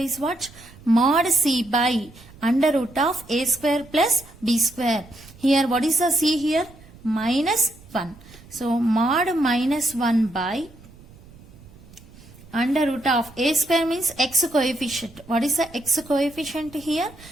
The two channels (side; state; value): right; noise; rumble, 22 dB below the sound